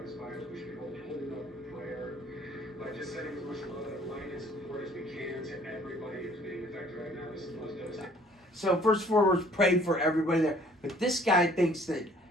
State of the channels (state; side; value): normal; both; correlation 0.57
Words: these fires, we should be holding up in prayer, by just sending as much love and light and support as we can to everybody who's being affected right now. This is the most devastating. So first and foremost, pray for everybody there. But this guy thinks that